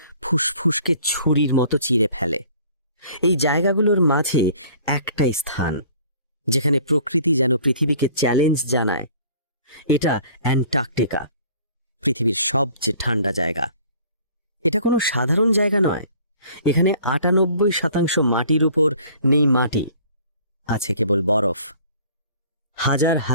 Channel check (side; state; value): both; inverted; correlation -0.52